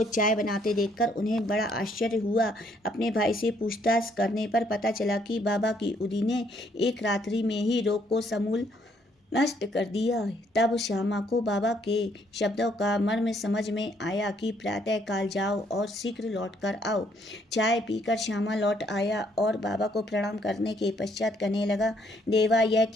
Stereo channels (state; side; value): normal; both; correlation 0.68